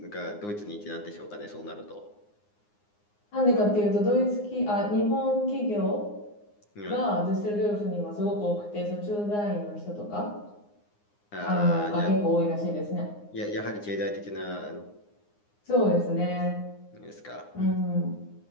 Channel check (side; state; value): right; late; 9.7 ms